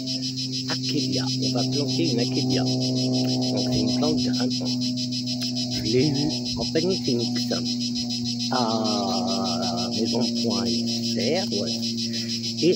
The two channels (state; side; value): normal; both; correlation 0.97